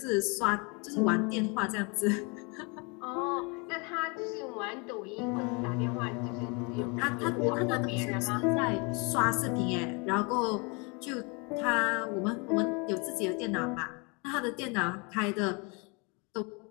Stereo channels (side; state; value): right; quieter; 31.2 dB